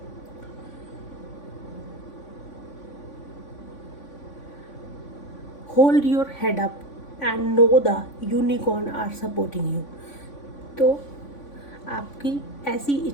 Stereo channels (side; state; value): right; late; 3.5 ms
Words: Hold your head up and know the unicorn are supporting you. तो आपकी ऐसी